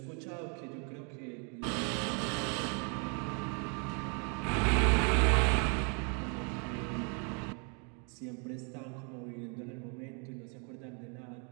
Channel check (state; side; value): quieter; left; 37.8 dB